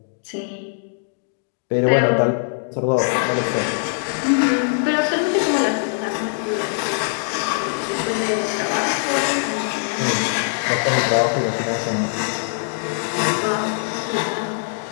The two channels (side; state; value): right; silent; digital silence